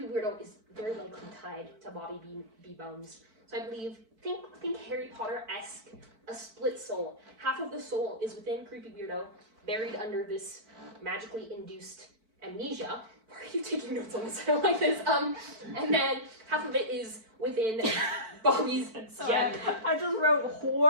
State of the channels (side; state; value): left; late; 4.5 ms